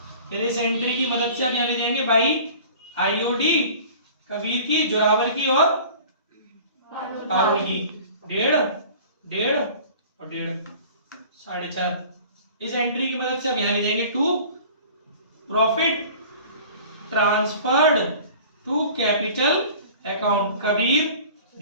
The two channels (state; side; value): inverted; both; correlation -0.44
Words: फिर इस एंट्री की मदद से आप यहां ले जाएंगे बाई आईओडी कबीर की, जोरावर की और पारुल की, 1.5 और 1.5 4.5। इस एंट्री की मदद से अब यहां ले जाएंगे to profit transferred to capital account Kabir,